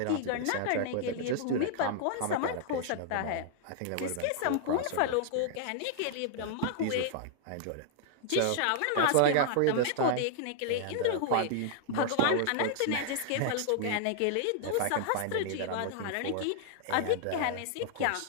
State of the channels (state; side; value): different; both; correlation -0.01